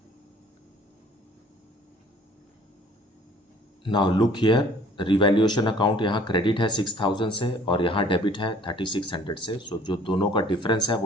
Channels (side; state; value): both; normal; correlation 0.54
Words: Now look here, revaluation account यहाँ क्रेडिट है 6000 से और यहाँ डेबिट है 3600 से. सो जो दोनों का डिफरेंस है